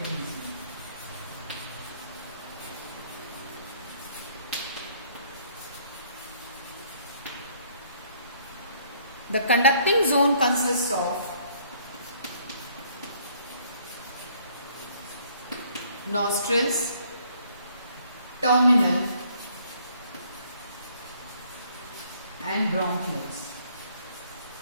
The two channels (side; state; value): both; inverted; correlation -0.63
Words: The conducting zone consists of nostrils, terminal and bronchioles.